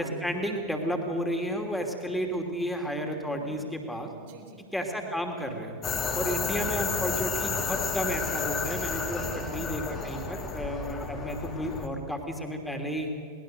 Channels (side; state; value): both; normal; correlation 0.46